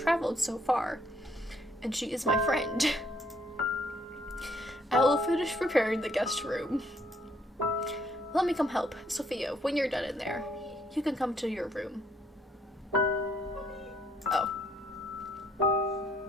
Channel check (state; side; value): normal; both; correlation 0.68